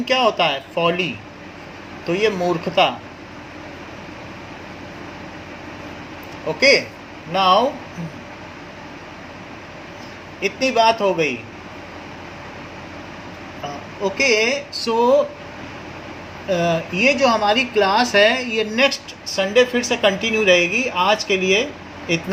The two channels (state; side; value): identical; both; correlation 1.00